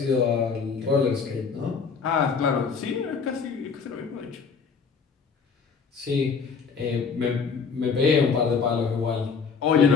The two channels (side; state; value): right; quieter; 5.5 dB